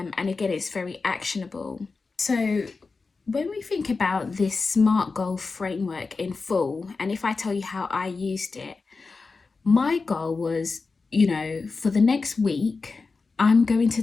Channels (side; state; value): right; quieter; 4.3 dB